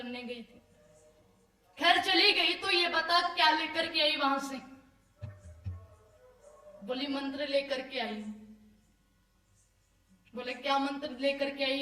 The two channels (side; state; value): both; identical; correlation 1.00